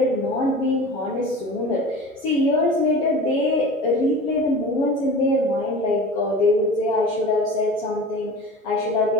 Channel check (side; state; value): both; normal; correlation 0.36